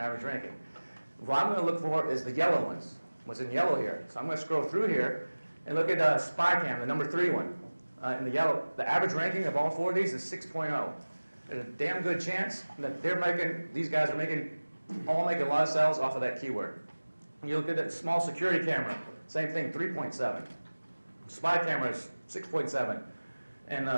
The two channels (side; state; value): both; inverted; correlation -1.00